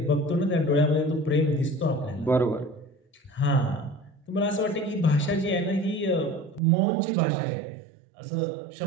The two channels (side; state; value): left; drops out; at 6.6 s